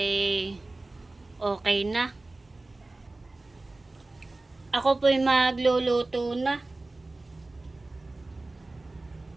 okay na. Ako po ay magluluto na.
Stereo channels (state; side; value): quieter; left; 3.0 dB